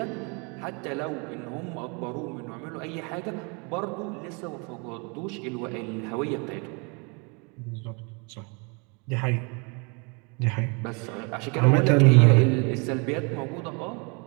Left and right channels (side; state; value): left; quieter; 32.4 dB